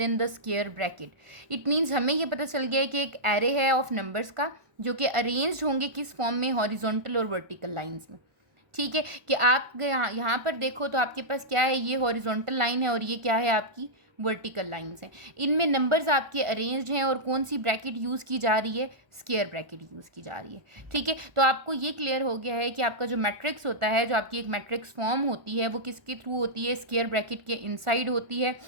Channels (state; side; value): late; left; 1.4 ms